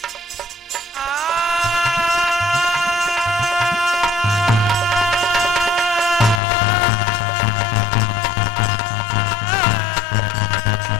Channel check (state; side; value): drops out; right; at 6.4 s